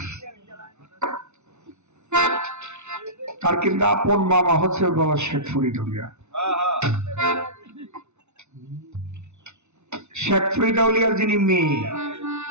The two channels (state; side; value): late; left; 0.82 ms